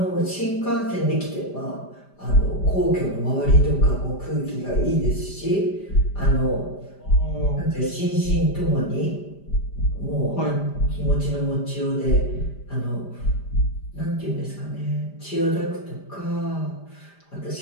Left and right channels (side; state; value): right; late; 5.0 ms